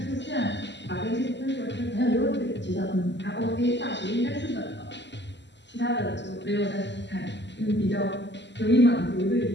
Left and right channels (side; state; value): right; late; 0.51 ms